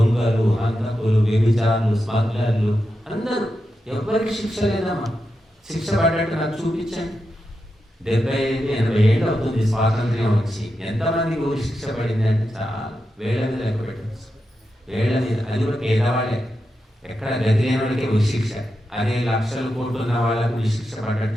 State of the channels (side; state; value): both; normal; correlation 0.88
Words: హంతకులు, వ్యభిచారులు, స్మగ్లర్లు అందరూ. ఎవరికి శిక్ష లేదమ్మా. శిక్ష పడ్డట్టు నాకు చూపించండి. 75-80 ఏళ్ళు అవుతుంది స్వాతంత్ర్యం వచ్చి, ఎంతమందికి ఊరి శిక్ష పడింది అంటే చాలా వేళ్ళ మీద లెక్క పెట్టచ్చు. వేళ్ళ మీద. అది కూడా పేదవాళ్ళే, ఎక్కడ గతి లేని వాళ్ళకే ఊరి శిక్ష. అదే లక్షల కోట్లు ఉన్న వాళ్ళకు ఊరి శిక్ష పడ్డట్టు